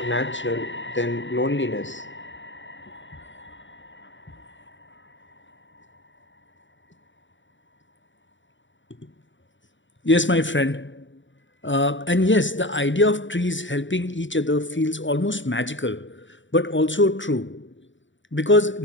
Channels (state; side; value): late; right; 0.55 ms